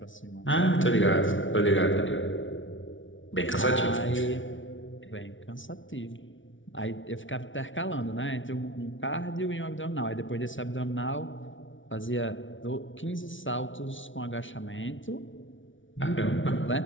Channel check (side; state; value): right; late; 0.56 ms